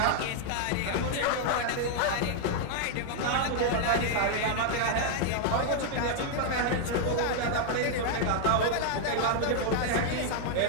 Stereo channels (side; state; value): both; different; correlation 0.00